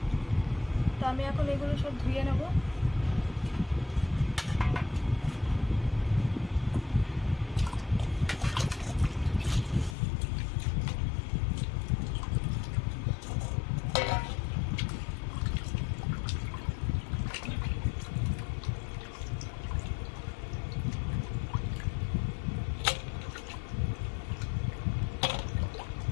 তো আমি এখন এগুলো সব ধুয়ে নেব।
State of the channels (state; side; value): drops out; right; at 10.0 s